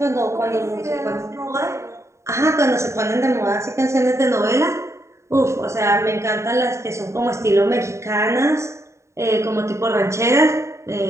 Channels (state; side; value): late; left; 0.14 ms